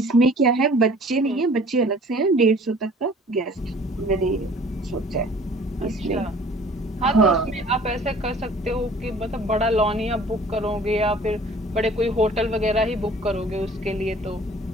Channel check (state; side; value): normal; both; correlation 0.50